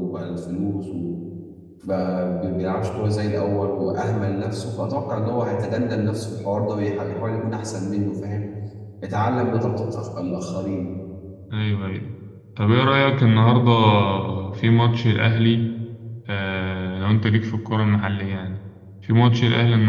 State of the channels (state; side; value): identical; both; correlation 1.00